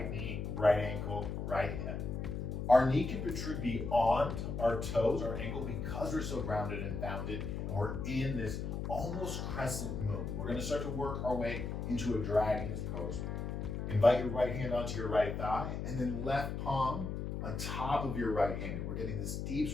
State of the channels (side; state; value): left; noise; hum, 4 dB below the sound